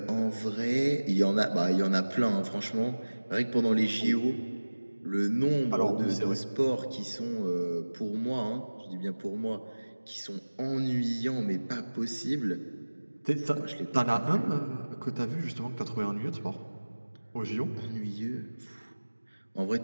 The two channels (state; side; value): inverted; both; correlation -1.00